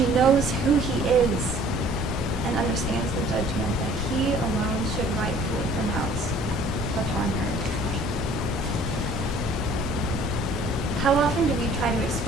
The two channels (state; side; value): normal; both; correlation 0.53